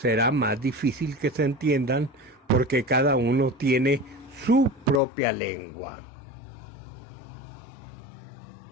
más difícil que se entiendan porque cada uno tiene su propia lengua.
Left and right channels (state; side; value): drops out; right; at 5.0 s